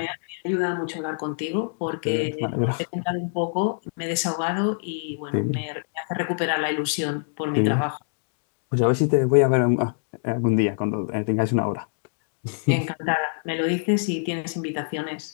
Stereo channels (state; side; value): silent; right; digital silence